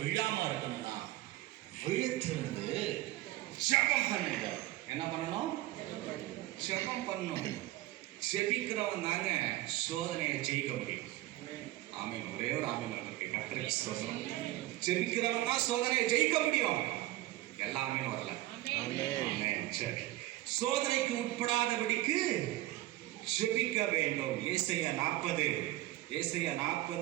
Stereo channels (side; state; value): left; quieter; 17.0 dB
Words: விழாம இருக்கணும்னா, விழுத்திருந்து ஜெபம் பண்ணுங்க. என்ன பண்ணணும்? ஜெபம் பண்ணணும். ஜெபிக்கிறவன் தாங்க சோதனையை ஜெயிக்க முடியும். ஆமீன். ஒரே ஒரு ஆமீன் இருக்கு. கர்த்தருக்கு ஸ்தோத்திரம். ஜெபிக்கிறவன் தான் சோதனையை ஜெயிக்க முடியும். எல்லாமே வரல. ஆமென். சரி. சோதனைக்கு உட்படாதபடிக்கு ஜெபிக்க வேண்டும். ஏசாயா